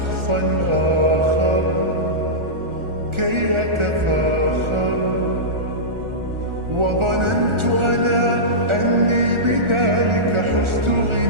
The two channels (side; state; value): left; late; 1.4 ms